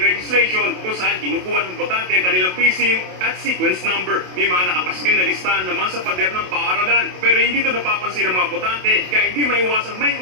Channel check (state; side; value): late; left; 27 ms